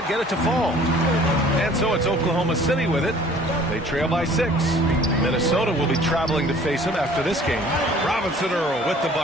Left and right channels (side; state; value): both; normal; correlation 0.52